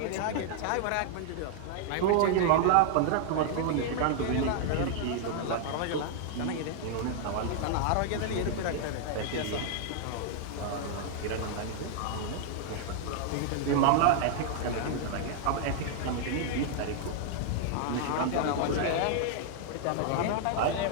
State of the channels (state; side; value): different; both; correlation -0.01